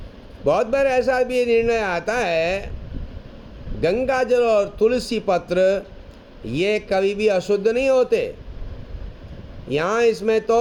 बहुत बार ऐसा भी निर्णय आता है, गंगा जल और तुलसी पत्र ये कभी भी अशुद्ध नहीं होते। यहाँ इसमें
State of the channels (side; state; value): both; identical; correlation 1.00